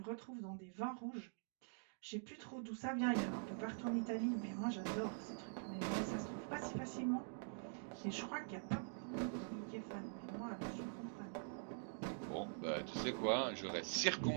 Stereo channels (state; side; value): silent; left; digital silence